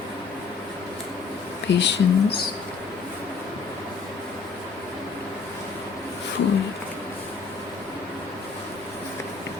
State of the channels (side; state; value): right; quieter; 4.9 dB